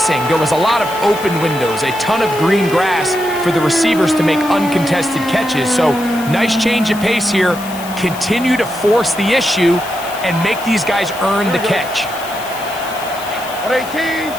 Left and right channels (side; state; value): left; noise; hiss, 15 dB below the sound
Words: There was a lot of open windows, a ton of green grass for the receivers to make uncontested catches. So nice change of pace here. Continue to force the issue and make these guys earn the catch. 18.